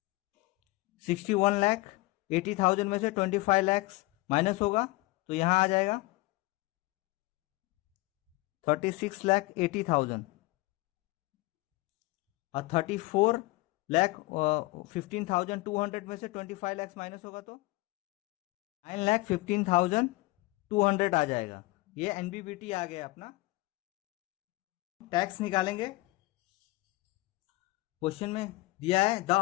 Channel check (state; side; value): quieter; right; 21.2 dB